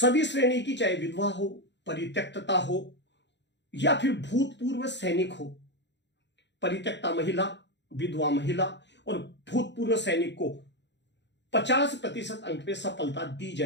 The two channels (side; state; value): right; late; 0.52 ms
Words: श्रेणी की, चाहे विधवा हो, परित्यक्तता हो या फिर भूतपूर्व सैनिक हो, परित्यक्ता महिला, विधवा महिला और भूतपूर्व सैनिक को 50% अंक पे सफलता दी